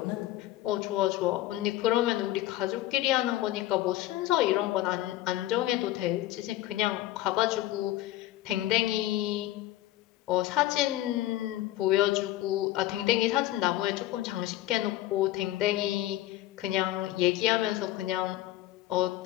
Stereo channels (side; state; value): right; quieter; 15.2 dB